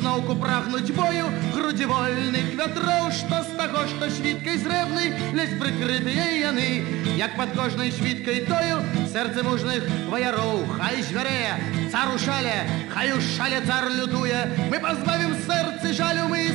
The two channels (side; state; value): left; quieter; 19.0 dB